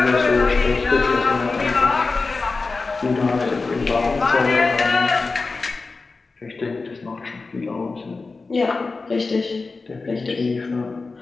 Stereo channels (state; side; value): quieter; right; 3.9 dB